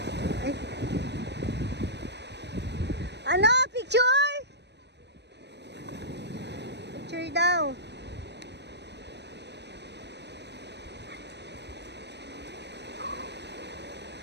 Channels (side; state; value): left; late; 0.50 ms